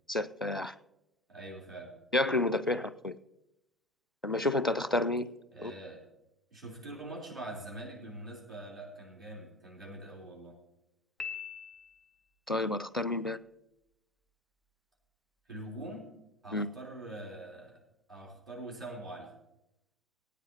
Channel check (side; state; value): both; normal; correlation 0.33